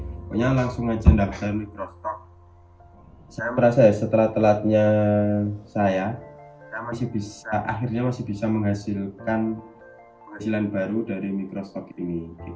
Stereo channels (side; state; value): both; identical; correlation 1.00